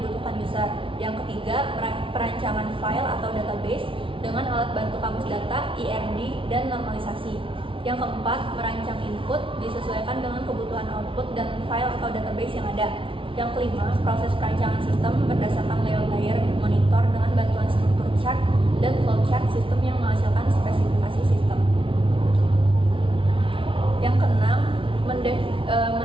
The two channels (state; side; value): late; left; 0.25 ms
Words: user. Yang ketiga, perancangan file atau database dengan alat bantu kamus data, ERD, dan normalisasi. Yang keempat, merancang input disesuaikan dengan kebutuhan output dan file atau database yang ada. Yang kelima, proses perancangan sistem berdasarkan layer monitor dengan bantuan struktur chart dan flowchart sistem yang menghasilkan spesifikasi sistem. Yang keenam,